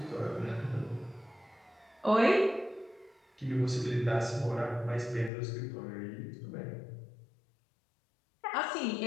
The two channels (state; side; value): drops out; right; at 5.3 s